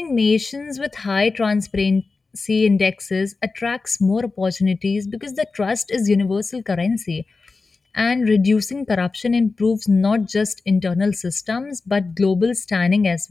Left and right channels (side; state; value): right; quieter; 4.0 dB